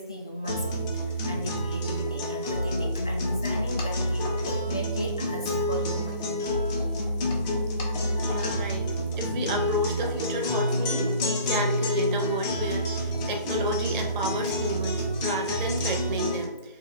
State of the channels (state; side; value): inverted; both; correlation -0.50